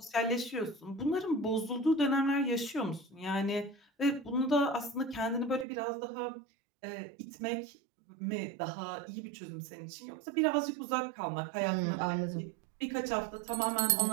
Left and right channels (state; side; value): drops out; left; at 5.7 s